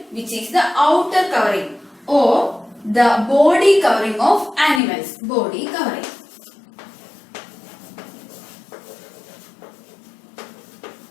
which is the outer covering or the body covering of animals. Body covering.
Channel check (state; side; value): drops out; right; at 4.8 s